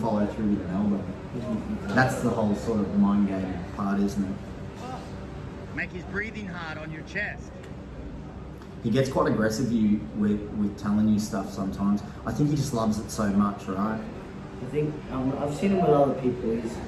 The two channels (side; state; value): both; identical; correlation 1.00